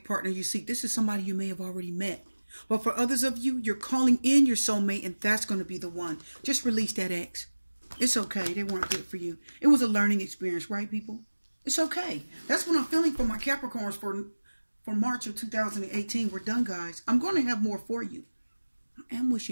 partner you seek. This is somebody you may have already met. But for others of you, you're calling in your soulmate, and that's going to be the one. Just release that ex. It's okay. They weren't good for you. It was a learning experience, right, people? It's okay. That's what I'm feeling for my Capricorns for March of 2018. We're done, guys. I'm going to have more for you. I am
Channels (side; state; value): both; inverted; correlation -1.00